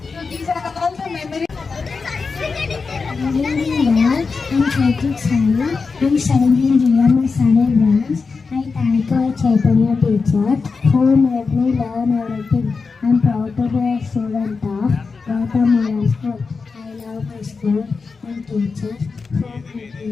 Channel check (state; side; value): quieter; right; 4.7 dB